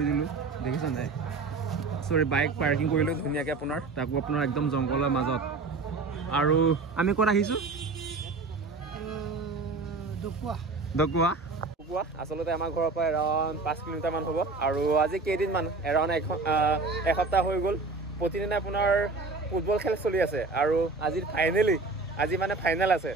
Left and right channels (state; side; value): quieter; left; 3.9 dB